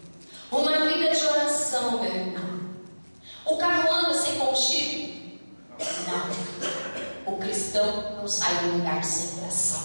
Uma vida de oração, meu irmão. O carro anda sem combustível? Não. O cristão não sai do lugar sem oração.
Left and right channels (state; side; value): inverted; both; correlation -1.00